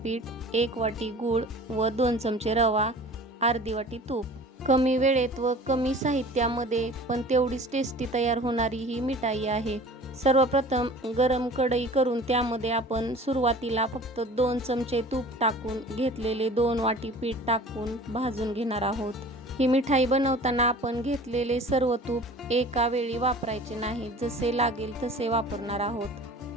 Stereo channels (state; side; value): normal; both; correlation 0.43